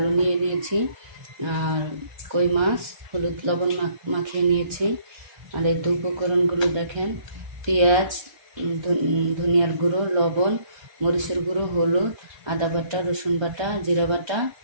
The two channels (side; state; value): left; late; 1.3 ms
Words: নিয়ে নিয়েছি, আর কই মাছ হলুদ লবণ মাখিয়ে নিয়েছি। আর এই তো উপকরণগুলো দেখেন: পেঁয়াজ, ধনিয়ার গুঁড়ো, লবণ, মরিচের গুঁড়ো, হলুদ, আদা বাটা, রসুন বাটা, জিরা বাটা।